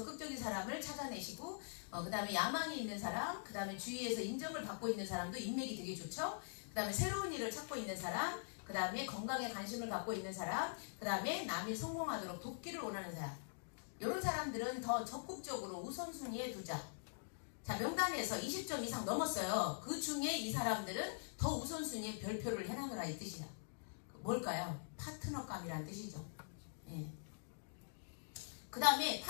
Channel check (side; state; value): right; silent; digital silence